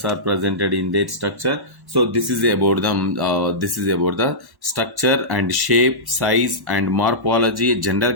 are presented in their structure. So this is about the structure and shape, size and morphology, general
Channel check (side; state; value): left; late; 1.1 ms